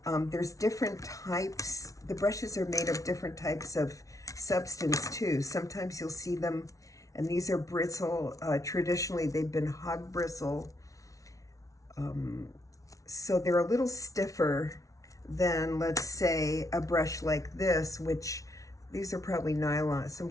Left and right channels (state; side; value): late; right; 0.17 ms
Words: There's different types. The brushes are made of different types of substance too. Sometimes you'll see them, and these are bristle. Traditionally, they've been hog bristle. So they're a little stiffer than, let's say, a brush like this, which these are probably nylon, some